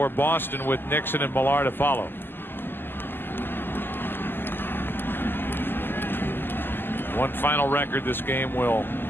Boston with Nixon and Millar to follow. One final record this game will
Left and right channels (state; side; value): late; right; 0.097 ms